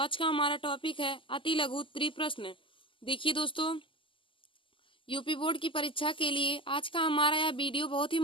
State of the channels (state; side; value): late; right; 0.25 ms